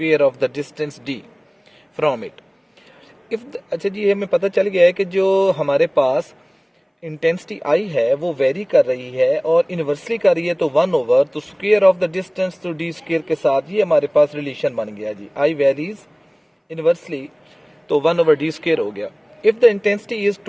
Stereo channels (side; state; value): both; identical; correlation 1.00